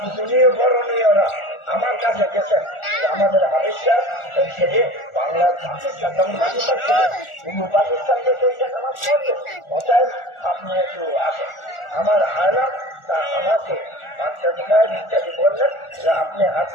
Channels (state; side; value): late; right; 1.4 ms